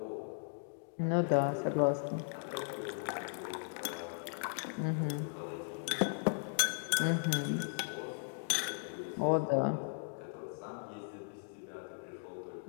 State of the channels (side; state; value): right; silent; digital silence